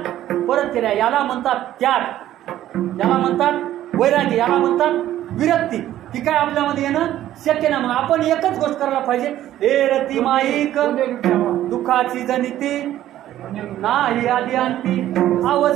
परत केल्या. याला म्हणतात त्याग, याला म्हणतात वैरागी, याला म्हणतात विरक्ती. ती काय आपल्यामध्ये येणं शक्य नाही. मग आपण एकच गोष्ट करायला पाहिजे, हे रती माईक दुःखाची जनिती नाही आदी अंती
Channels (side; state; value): left; quieter; 12.9 dB